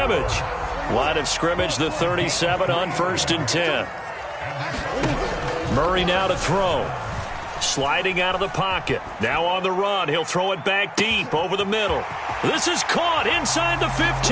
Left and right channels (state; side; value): identical; both; correlation 1.00